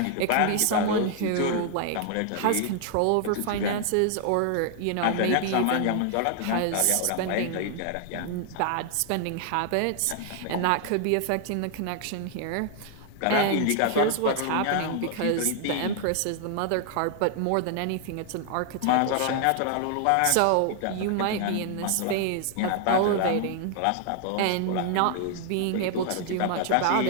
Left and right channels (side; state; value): both; different; correlation 0.00